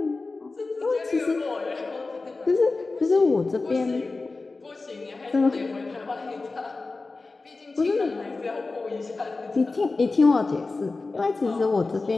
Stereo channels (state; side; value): quieter; right; 3.7 dB